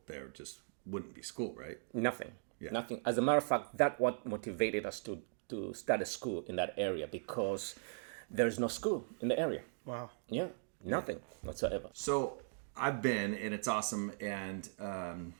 there just wouldn't be school, right? Nothing. As a matter of fact, that's what motivated us to start a school in that area, because there's no school in the area. Wow. Yeah, nothing whatsoever. So I've been, and it's awesome. And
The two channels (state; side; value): silent; left; digital silence